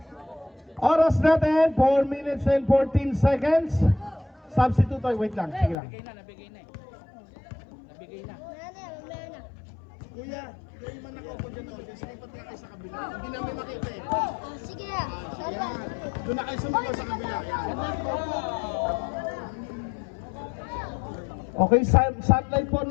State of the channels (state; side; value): drops out; right; at 5.8 s